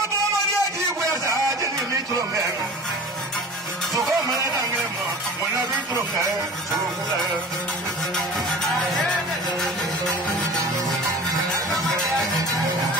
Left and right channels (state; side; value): normal; both; correlation 0.39